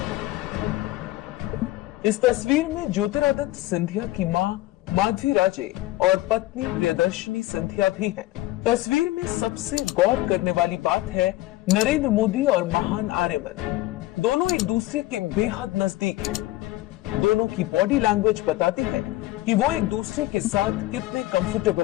इस तस्वीर में ज्योतिरादित्य सिंधिया की मां माधवी राजे और पत्नी प्रियदर्शनी सिंधिया भी हैं। तस्वीर में सबसे गौर करने वाली बात है नरेंद्र मोदी और महान आर्यमन दोनों एक दूसरे के बेहद नजदीक हैं। दोनों की बॉडी लैंग्वेज बताती है कि वो एक दूसरे के साथ कितने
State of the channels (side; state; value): right; quieter; 17.4 dB